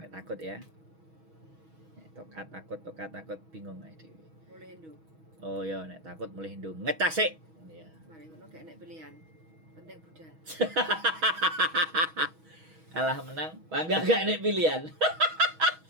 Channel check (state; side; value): late; left; 6.2 ms